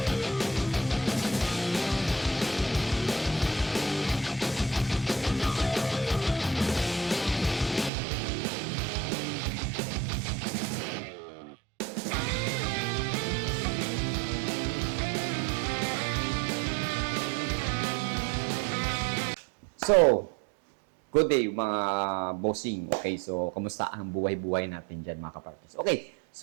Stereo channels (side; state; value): left; drops out; at 7.9 s